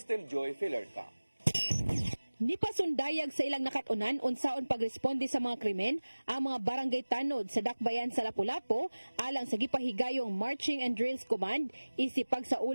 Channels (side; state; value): both; inverted; correlation -1.00